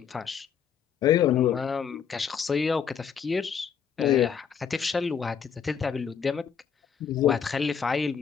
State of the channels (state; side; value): quieter; right; 7.3 dB